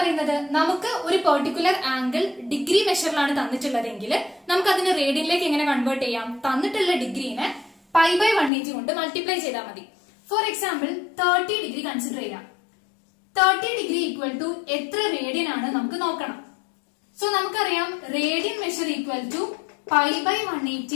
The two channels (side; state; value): right; drops out; at 8.5 s